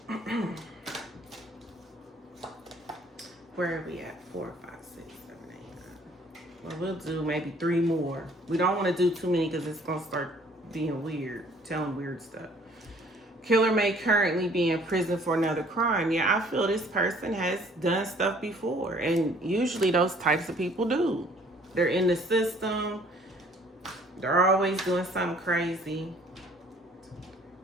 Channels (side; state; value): both; normal; correlation 0.57